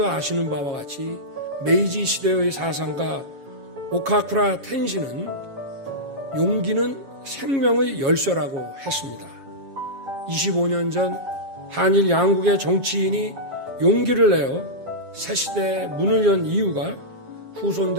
아시는 바와 같이 메이지 시대의 사상가 오카쿠라 텐신은 용기는 생명의 열쇠라고 했습니다. 25년 전 한일 양국의 정치인이 용기를 내어 새시대의 문을 연 이유가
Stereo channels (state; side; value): late; left; 7.3 ms